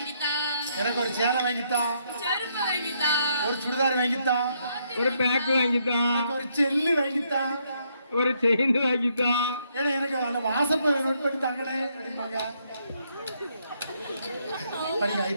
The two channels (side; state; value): both; inverted; correlation -0.74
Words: எனக்கு ஒரு சேலை வாங்கித்தான், செருப்பு வாங்கித்தா, ஒரு சுடிதார் வாங்கித்தான், ஒரு பேக் வாங்கிட்டோம். எனக்கு ஒரு செல்லு வாங்கித்தான். ஒரு செயின் வாங்கிட்டா. ஏன்னா எனக்கு அந்த வாசப்பை நோட் பண்ணி தாங்கனே அப்படிம்பாங்க. படிங்க